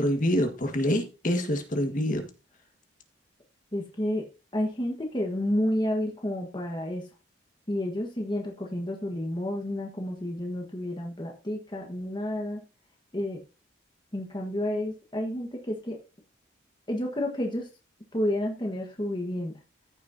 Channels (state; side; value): normal; both; correlation 0.80